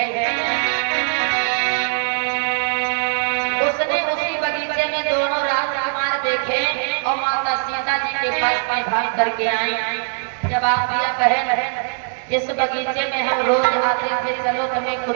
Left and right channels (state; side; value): silent; left; digital silence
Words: उसने उसी बगीचे में दोनों राजकुमार देखे और माता सीता जी के पास में भाग करके आई। जब आप दिया बहन इस बगीचे में हम रोज आते थे, चलो तुम्हें